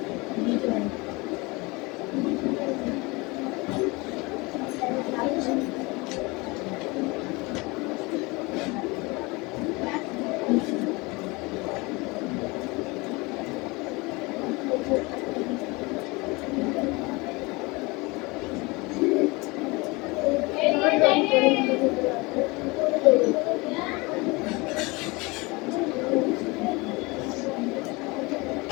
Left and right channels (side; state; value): right; quieter; 25.1 dB